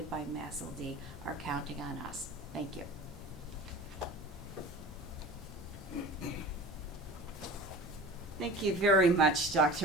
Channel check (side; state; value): both; normal; correlation 0.38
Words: by MASLD are counting on us. Thank you. Thank you very much,